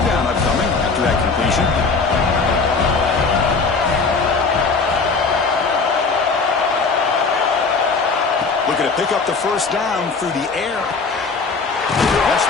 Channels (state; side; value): quieter; right; 4.5 dB